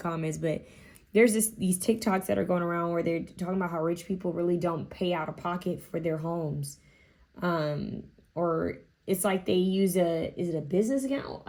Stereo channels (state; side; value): identical; both; correlation 1.00